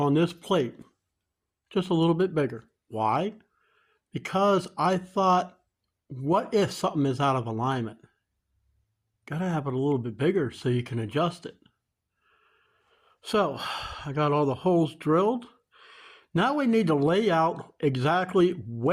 this plate just a little bit bigger. Why? Because I thought, what if something is out of alignment? Got to have it a little bit bigger so you can adjust it. So I got all the holes drilled. Now we need to lay out exactly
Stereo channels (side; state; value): both; identical; correlation 1.00